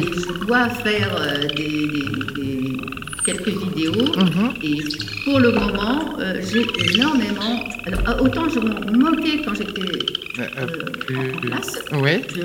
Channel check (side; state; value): both; identical; correlation 1.00